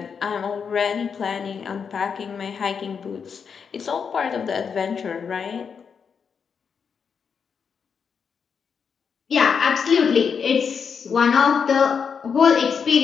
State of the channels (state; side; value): quieter; right; 6.4 dB